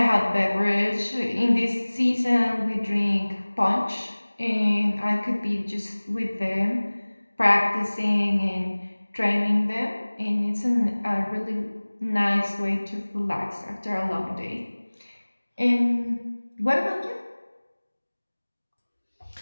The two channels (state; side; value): inverted; both; correlation -1.00